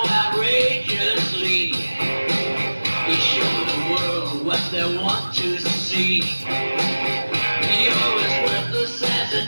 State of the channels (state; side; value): inverted; both; correlation -1.00